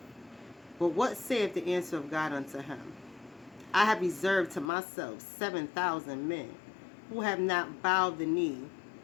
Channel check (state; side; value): drops out; right; at 4.7 s